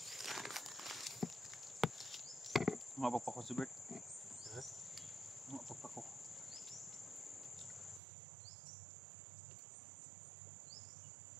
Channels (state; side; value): drops out; left; at 8.0 s